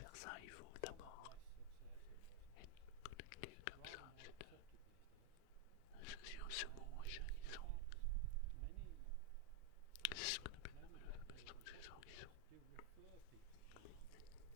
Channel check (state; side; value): different; both; correlation 0.01